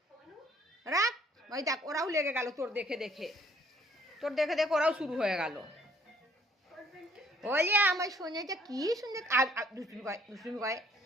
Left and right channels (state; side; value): normal; both; correlation 0.61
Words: রাখ। ওই দেখ, ওরাও লেগে গেল তোর দেখে দেখে। তোর দেখে দেখে ওরাও শুরু হয়ে গেল। ওলে আমার সোনাটা কি সুন্দর। আর দুষ্টুমি করে, দুষ্টুমি করে।